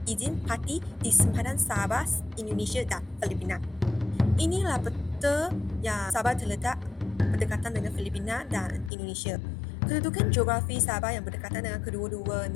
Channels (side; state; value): right; drops out; at 8.9 s